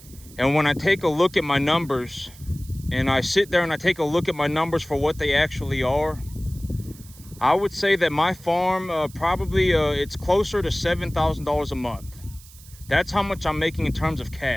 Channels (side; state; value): right; noise; hiss, 21 dB below the sound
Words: And when I take a look at my numbers and I sit there and I take a look at my numbers for what they actually are, I would say that my farm probably it's closer to $7,000 a month. That's how much I'm making in terms of